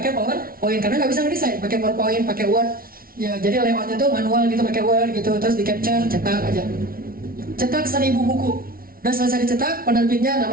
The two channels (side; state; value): left; late; 0.43 ms